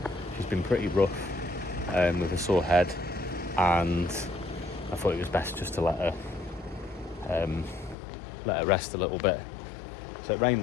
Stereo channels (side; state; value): right; drops out; at 8.0 s